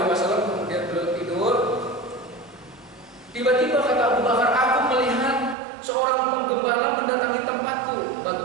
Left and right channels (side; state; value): left; drops out; at 5.6 s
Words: Wasallam kemudian beliau tidur. Tiba-tiba kata Abu Bakar, aku melihat seorang penggembala mendatangi tempatku,